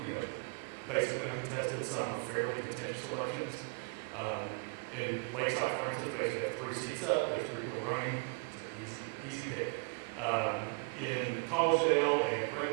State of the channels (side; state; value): left; quieter; 39.4 dB